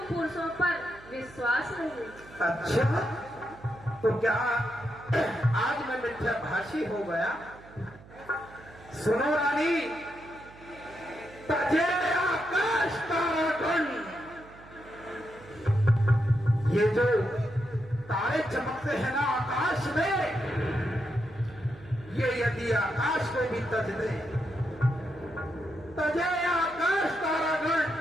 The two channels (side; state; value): right; noise; hum, 21 dB below the sound